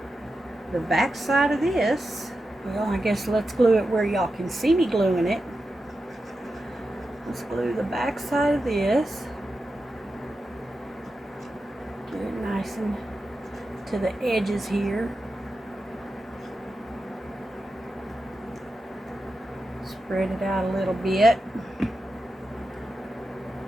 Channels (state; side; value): normal; both; correlation 0.90